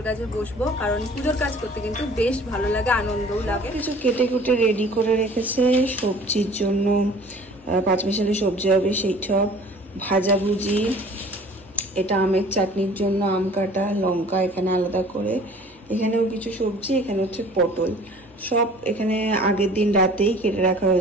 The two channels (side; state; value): both; normal; correlation 0.49